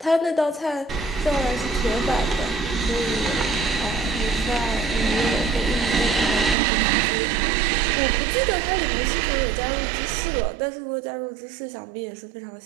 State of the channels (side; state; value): left; drops out; at 6.6 s